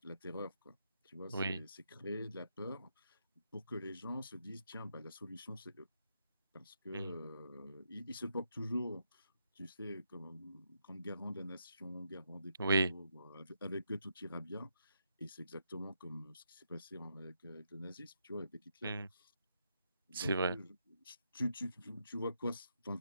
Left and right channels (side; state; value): both; inverted; correlation -0.81